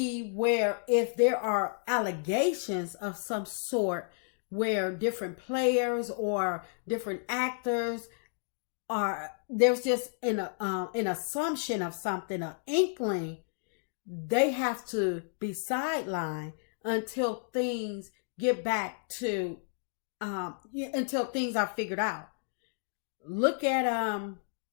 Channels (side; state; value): right; silent; digital silence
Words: where if there are allegations of some sort where different players or different actors there's just an assumption of something, an inkling, they have to be sidelined until things get back to until things are figured out. Look at